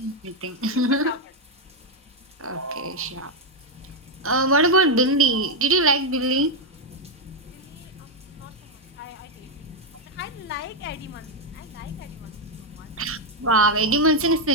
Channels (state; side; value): normal; both; correlation 0.01